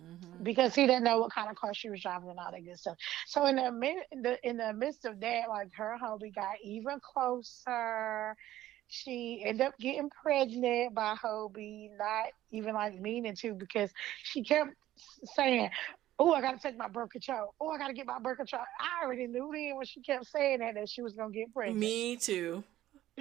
because he didn't know what kind of car she was driving and all that good stuff. So in the midst of that, like her hubby got even closer. She ended up getting pregnant by Hobie, not even like meaning to, because she kept saying, "Oh, I gotta take my birth control. Oh, I gotta get my birth control." I already knew then when she kept saying that she was gonna get pregnant. me too,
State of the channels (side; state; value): left; quieter; 14.0 dB